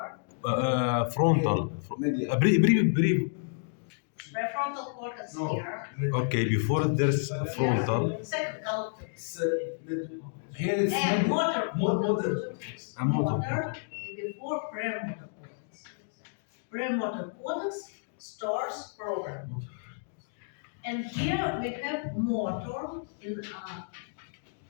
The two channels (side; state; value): right; silent; digital silence